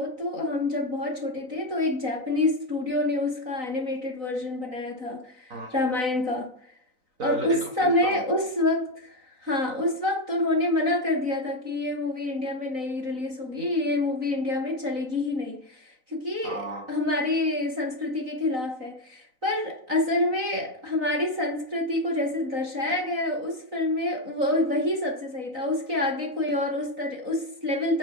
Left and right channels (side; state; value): left; late; 3.9 ms